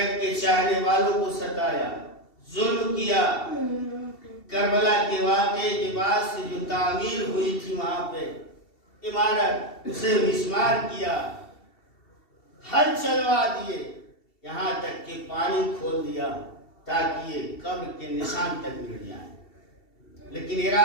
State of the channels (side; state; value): right; late; 2.7 ms